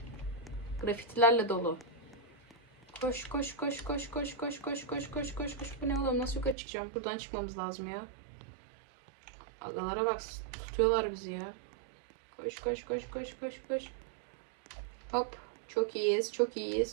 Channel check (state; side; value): drops out; left; at 6.6 s